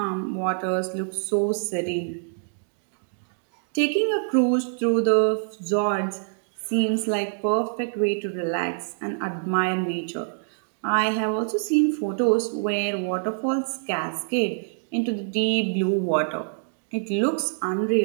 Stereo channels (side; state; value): left; silent; digital silence